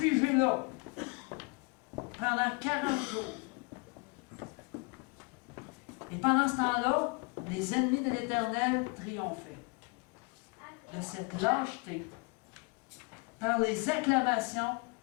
là pendant 40 jours. Et pendant ce temps-là, les ennemis de l'Éternel triomphaient de cette lâcheté par les acclamations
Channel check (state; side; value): quieter; right; 30.3 dB